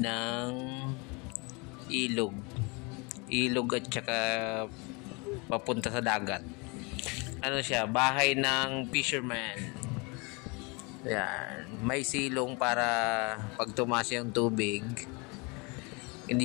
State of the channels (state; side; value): quieter; right; 29.3 dB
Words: ilog. Ilog at saka papunta sa dagat. Ano siya, bahay ng fisherman. Yan, may silong para pag tumaas yung tubig, hindi